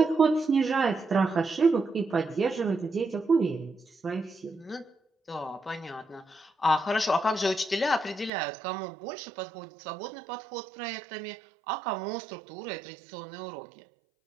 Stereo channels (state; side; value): drops out; left; at 8.3 s